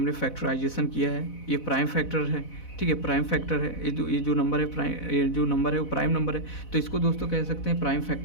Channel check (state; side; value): late; right; 4.0 ms